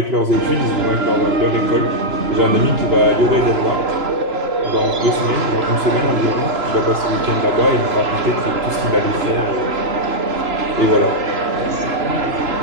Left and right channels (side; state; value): left; late; 3.0 ms